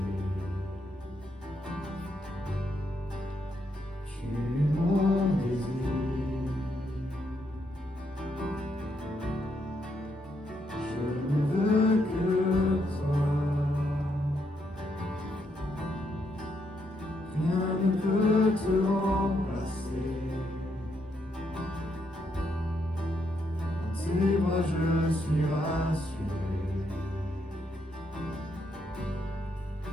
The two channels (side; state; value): both; normal; correlation 0.77